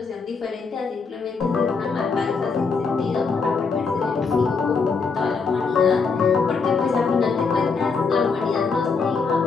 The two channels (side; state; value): right; quieter; 4.9 dB